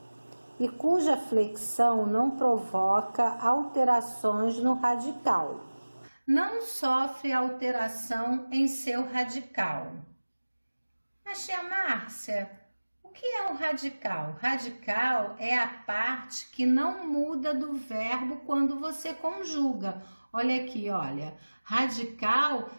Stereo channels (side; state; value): both; inverted; correlation -1.00